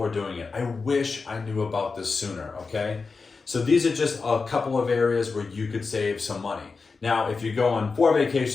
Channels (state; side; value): quieter; right; 4.5 dB